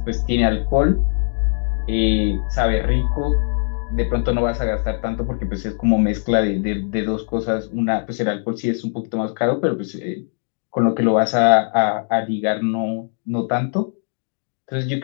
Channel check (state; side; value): silent; right; digital silence